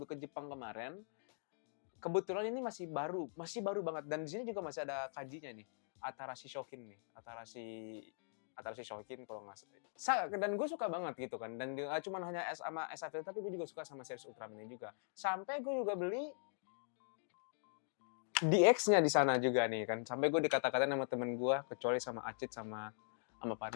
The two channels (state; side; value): silent; right; digital silence